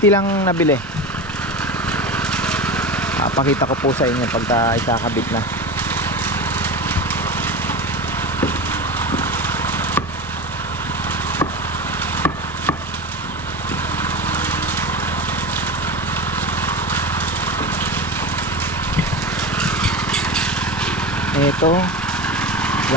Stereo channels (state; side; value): normal; both; correlation 0.26